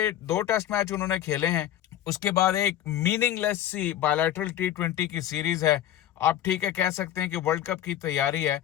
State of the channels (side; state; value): right; quieter; 12.0 dB